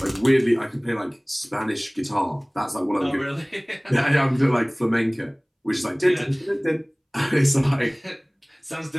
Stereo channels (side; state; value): both; identical; correlation 1.00